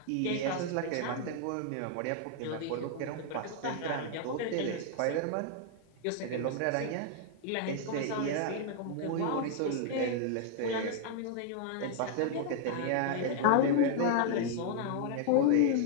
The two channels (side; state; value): both; different; correlation 0.00